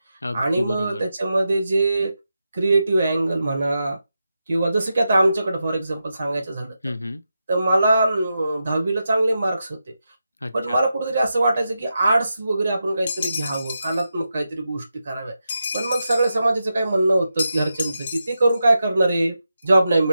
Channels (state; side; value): inverted; both; correlation -0.88